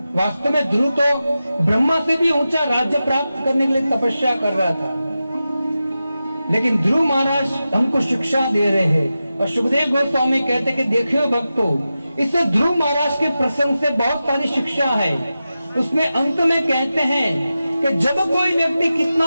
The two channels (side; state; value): both; inverted; correlation -0.92